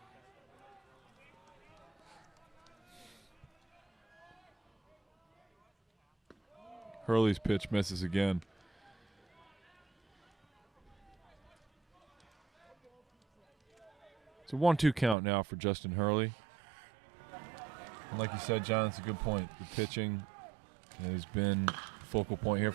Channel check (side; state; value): left; drops out; at 15.2 s